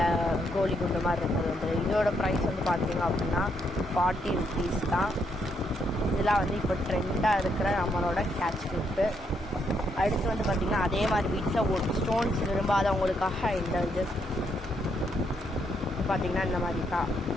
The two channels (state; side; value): normal; both; correlation 0.76